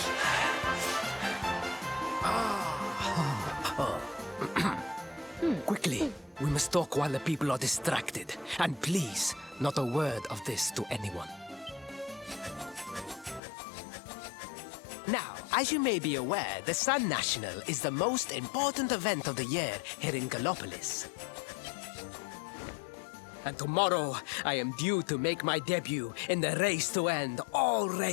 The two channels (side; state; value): right; drops out; at 13.4 s